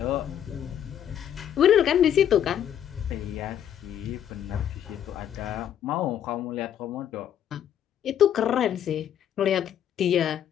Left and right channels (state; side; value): quieter; right; 9.9 dB